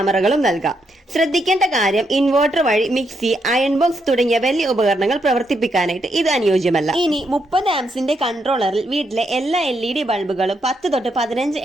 നൽകാം. ശ്രദ്ധിക്കേണ്ട കാര്യം, ഇൻവെർട്ടർ വഴി മിക്സി, അയൺ ബോക്സ് തുടങ്ങിയ വലിയ ഉപകരണങ്ങൾ പ്രവർത്തിപ്പിക്കാനായിട്ട് ഇത് അനുയോജ്യമല്ല. ഇനി 30 ആംസിന്റെ കൺട്രോളറിൽ വീട്ടിലെ എല്ലാ LED ബൾബുകളും 10 തൊട്ട് 15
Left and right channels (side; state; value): both; normal; correlation 0.79